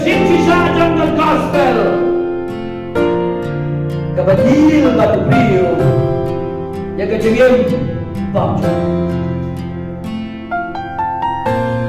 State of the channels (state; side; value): identical; both; correlation 1.00